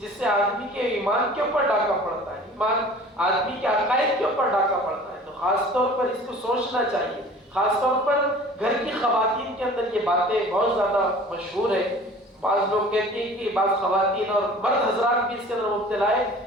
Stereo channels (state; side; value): normal; both; correlation 0.45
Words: سے آدمی کے ایمان کے اوپر ڈاکہ پڑتا ہے، ایمان آدمی کے عقائد کے اوپر ڈاکہ پڑتا ہے. تو خاص طور پر اس کو سوچنا چاہیے. خاص طور پر گھر کی خواتین کے اندر یہ باتیں بہت زیادہ مشہور ہے. بعض لوگ کہتے ہیں کہ بعض خواتین اور مرد حضرات بھی اس کے اندر مبتلا ہے.